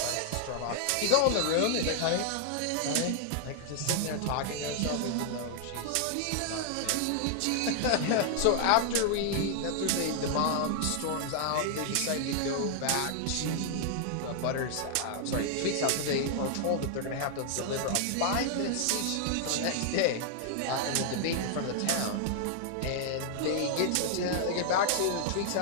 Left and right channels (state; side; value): different; both; correlation 0.00